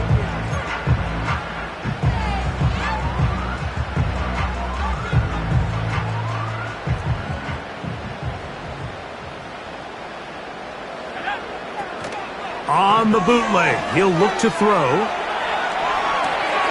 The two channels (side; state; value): both; identical; correlation 1.00